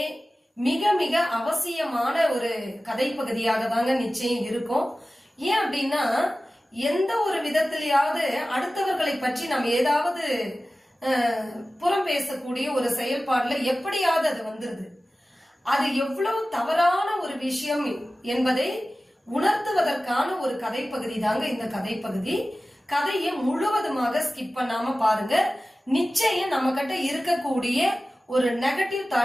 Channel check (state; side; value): normal; both; correlation 0.96